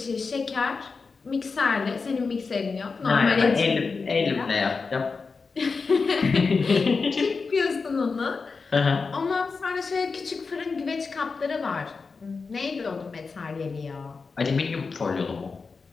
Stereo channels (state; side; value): quieter; right; 4.6 dB